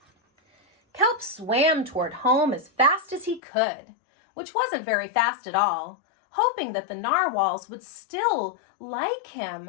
Kelp swam toward home as fast as he could, which wasn't very fast at all, hoping that the narwhals would still like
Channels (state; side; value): drops out; right; at 3.4 s